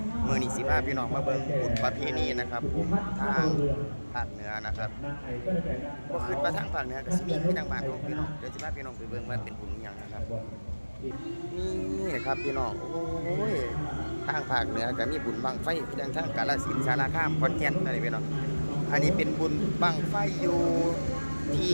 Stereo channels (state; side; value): inverted; both; correlation -1.00